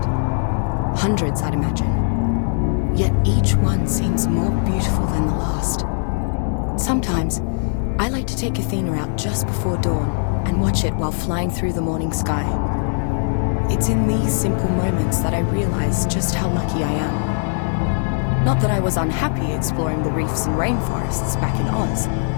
Hundreds, I'd imagine. Yet each one seems more beautiful than the last. Sometimes, I like to take Athena out just before dawn and watch it while flying through the morning sky. It's in these simple moments that I realize just how lucky I am. Not that I was unhappy exploring the reefs and rainforests back in Oz,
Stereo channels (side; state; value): right; silent; 66 dB below the other